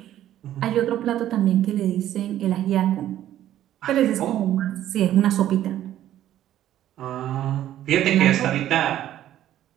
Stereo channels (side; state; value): left; quieter; 12.3 dB